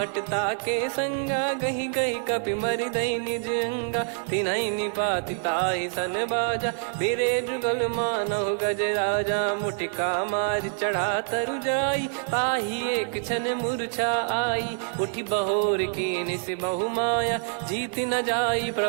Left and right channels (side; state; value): left; silent; digital silence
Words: के संगा, गही गही कपि मरि दई निज अंगा। तिनहि निपाति ताहि सन बाजा, फिरे जुगल मानव गज राजा। मुटिका मार चढ़ा तरु जाई, पाही एक क्षण मूर्छा आई। उठी बहोर कीन से बहु माया, जीत न जाई